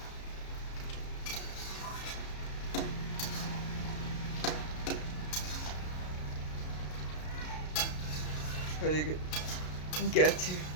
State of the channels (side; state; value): right; late; 33 ms